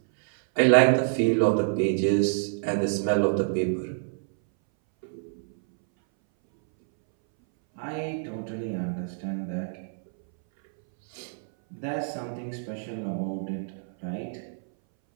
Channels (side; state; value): left; silent; 60 dB below the other